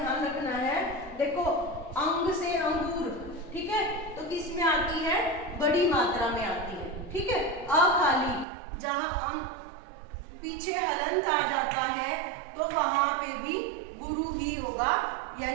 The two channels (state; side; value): drops out; left; at 8.5 s